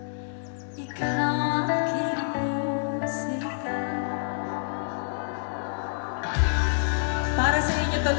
ikaw ang aking musika. Para sa inyo to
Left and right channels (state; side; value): silent; right; digital silence